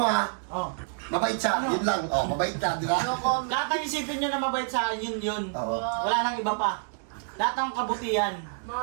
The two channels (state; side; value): silent; left; digital silence